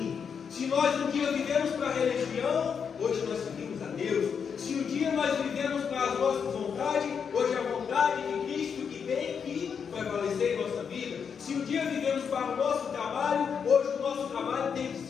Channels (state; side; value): quieter; right; 6.7 dB